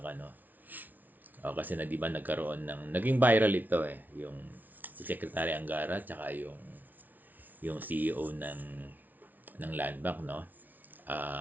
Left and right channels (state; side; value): late; left; 0.081 ms